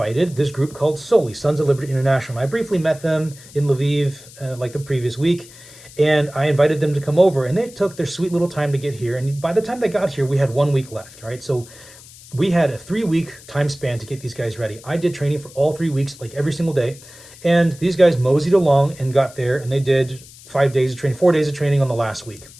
this group called Soli, Sons of Liberty International. I briefly met them in Lviv like the previous week, and I invited them to come over, and they took their sweet little time to get here. And by the time they got here, we had 1 week left, right? So we had a 3-week time span to get these guys ready. I did training for all 3 weeks, like every single day. And these guys moseyed along and got there, and they did 5 days of training, 4 days of training on the last week.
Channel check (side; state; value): left; noise; hiss, 20 dB below the sound